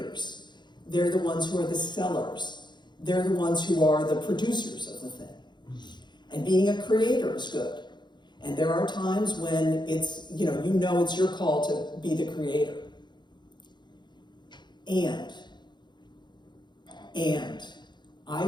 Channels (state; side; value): late; right; 0.21 ms